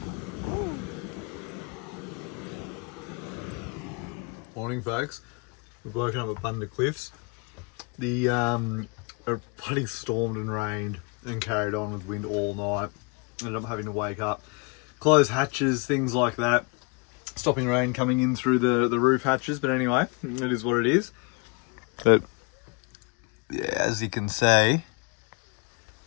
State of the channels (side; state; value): right; quieter; 32.0 dB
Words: Morning folks, we've woken up at Bunda Cliffs. The bloody stormed and rained and carried on with wind all night. Ended up having to wake up, close hatches, things like that. Stopping rain coming in through the roof hatches, but anyway, it is what it is. But yeah, as you can see,